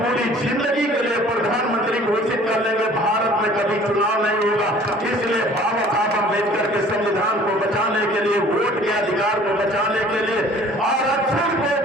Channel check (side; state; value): both; normal; correlation 0.51